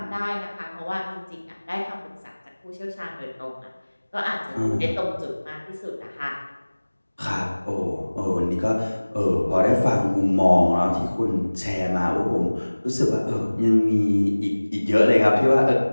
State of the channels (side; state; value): both; inverted; correlation -1.00